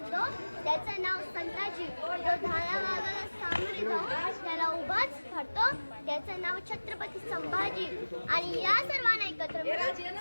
त्याचं नाव संताजी. जो धारावाला सामोरे जाऊन त्याला उभाच धरतो त्याचं नाव छत्रपती संभाजी. आणि या सर्वांना एकत्र मिळून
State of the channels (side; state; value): both; inverted; correlation -1.00